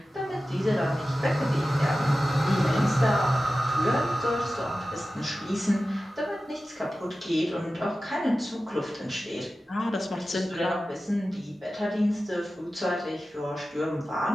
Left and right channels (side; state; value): both; normal; correlation 0.94